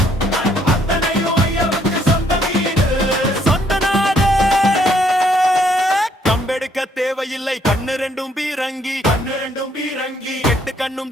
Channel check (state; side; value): normal; both; correlation 0.68